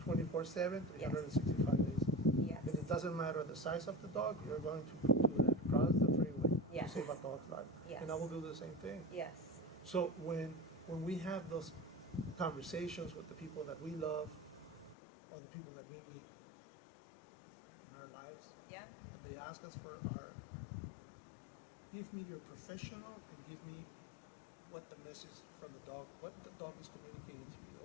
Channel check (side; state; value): right; drops out; at 15.0 s